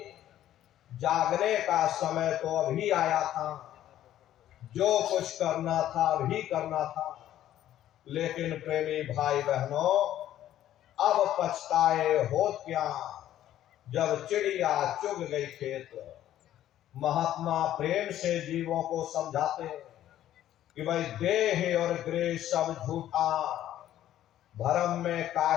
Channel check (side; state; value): right; quieter; 12.3 dB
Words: जागने का समय तो अभी आया था, जो कुछ करना था अभी करना था। लेकिन प्रेमी भाई बहनों, अब पछताए होत क्या, जब चिड़िया चुग गई खेत। महात्मा प्रेम से जीवों को समझाते कि भाई देह और गृह सब झूठा, भरम में